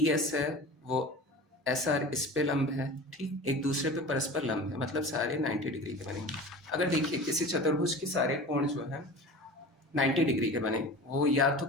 एस है वो एस आर इस पे लंब है, ठीक, एक दूसरे पे परस्पर लंब है, मतलब सारे 90 डिग्री के बनेंगे। अगर देखिए किसी चतुर्भुज के सारे कोण जो है 90 डिग्री के बने, वो या तो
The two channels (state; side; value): normal; both; correlation 0.36